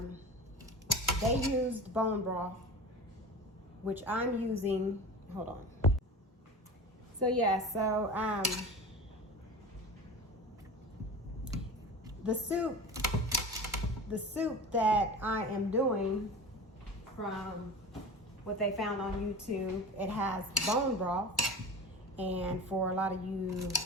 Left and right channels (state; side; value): normal; both; correlation 0.33